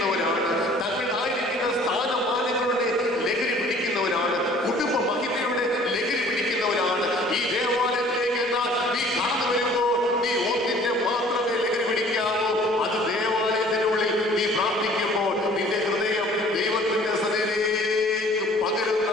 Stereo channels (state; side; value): normal; both; correlation 0.52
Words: തങ്ങളായിരിക്കുന്ന സ്ഥാനമാനങ്ങളുടെ ലഹരി പിടിക്കുന്നവരാണ്, കുടുംബ മഹിമയുടെ ലഹരി പിടിക്കുന്നവരാണ്. ഈ ദേവാലയത്തിലേക്ക് എന്നാൽ നീ കടന്നു വരുമ്പോൾ നീ ഒന്നിന്റെ മാത്രമേ ലഹരി പിടിക്കാവൂ, അത് ദേവാലയത്തിനുള്ളിൽ നീ പ്രാർത്ഥിക്കുമ്പോൾ നിന്റെ ഹൃദയം ദൈവത്തിന്റെ സന്നിധിയിലേക്ക് പകരുന്ന